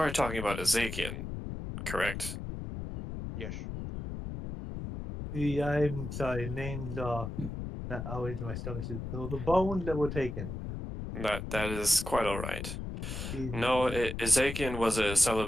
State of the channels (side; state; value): left; noise; rumble, 6 dB below the sound